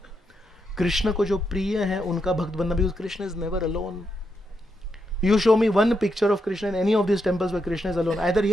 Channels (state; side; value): normal; both; correlation 0.82